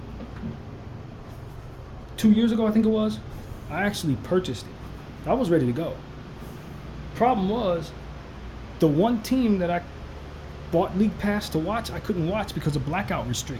2 years ago, I think it was. I actually purchased it. I was ready to go. Problem was, the one team that I bought league pass to watch, I couldn't watch because of blackout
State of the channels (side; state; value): both; identical; correlation 1.00